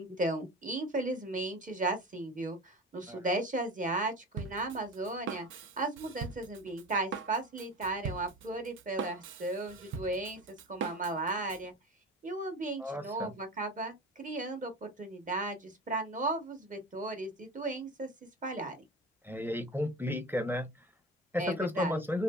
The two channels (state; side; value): normal; both; correlation 0.33